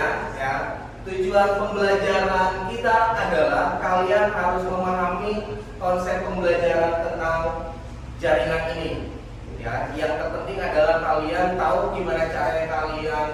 ya. Tujuan pembelajaran kita adalah kalian harus memahami konsep pembelajaran tentang jaringan ini ya. Yang terpenting adalah kalian tahu gimana caranya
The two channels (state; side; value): identical; both; correlation 1.00